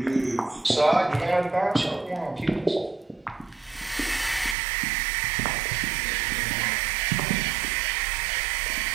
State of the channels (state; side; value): drops out; left; at 4.5 s